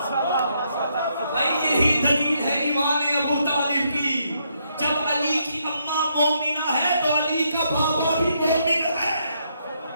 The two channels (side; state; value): both; inverted; correlation -0.75